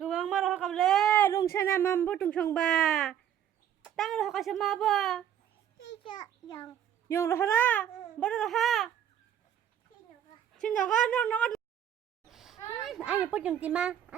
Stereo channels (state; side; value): quieter; left; 9.9 dB